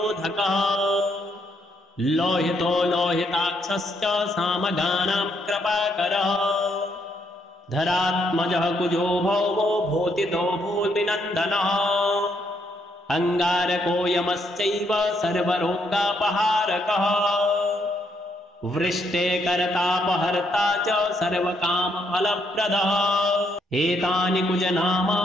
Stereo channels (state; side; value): normal; both; correlation 0.74